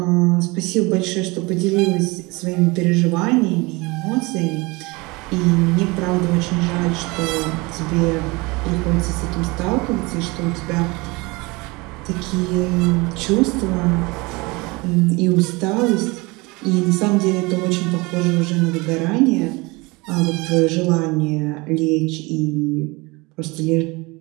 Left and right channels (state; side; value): quieter; left; 24.9 dB